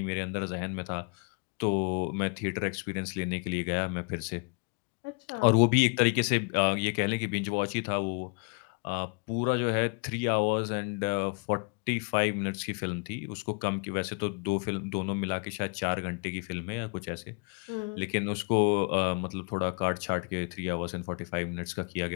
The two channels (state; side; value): quieter; right; 36.9 dB